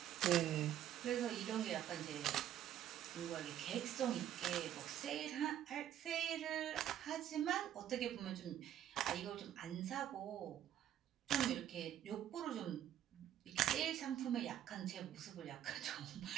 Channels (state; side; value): quieter; left; 11.1 dB